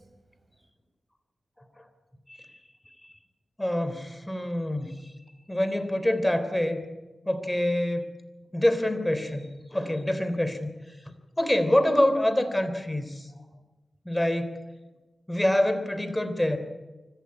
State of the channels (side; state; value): both; normal; correlation 0.98